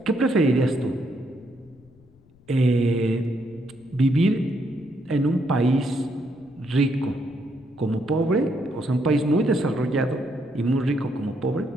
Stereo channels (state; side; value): noise; left; rumble, 28 dB below the sound